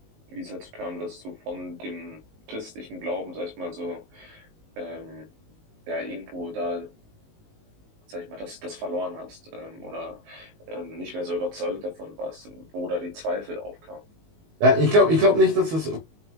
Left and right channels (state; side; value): late; left; 19 ms